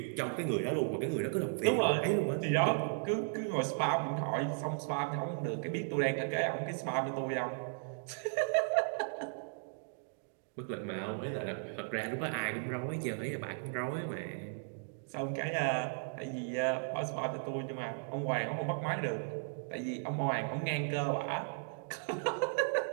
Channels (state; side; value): silent; left; digital silence